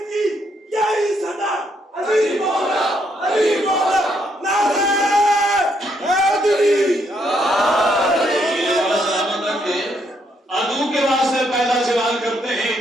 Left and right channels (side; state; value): both; normal; correlation 0.73